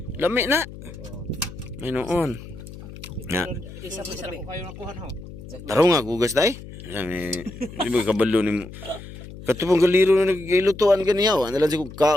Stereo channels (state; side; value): noise; left; hum, 14 dB below the sound